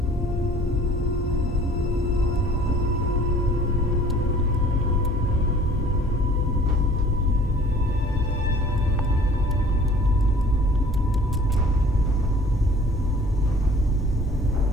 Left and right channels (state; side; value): normal; both; correlation 0.51